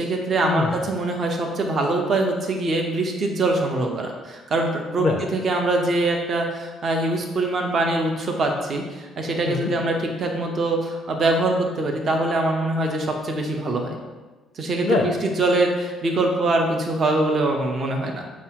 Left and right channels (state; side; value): normal; both; correlation 0.68